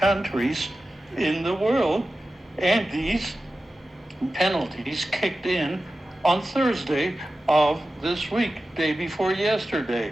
in the world. And these penalties kicked in on Thursday of this week, day before yesterday.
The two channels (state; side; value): normal; both; correlation 0.94